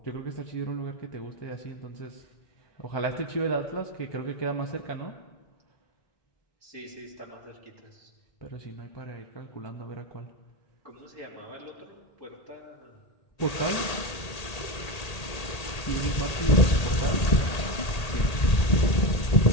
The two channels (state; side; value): late; right; 1.8 ms